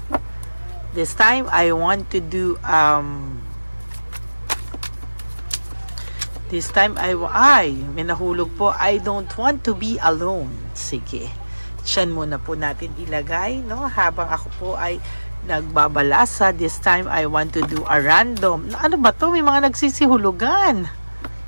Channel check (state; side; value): inverted; both; correlation -1.00